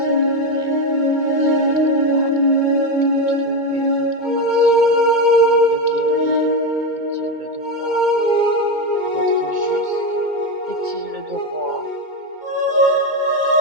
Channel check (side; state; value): left; late; 2.2 ms